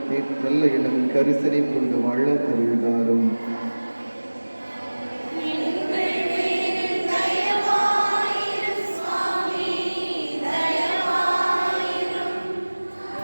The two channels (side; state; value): both; inverted; correlation -1.00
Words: எண்ணம் கரிசனை கொண்டு வாழ அறிவுதாரும்.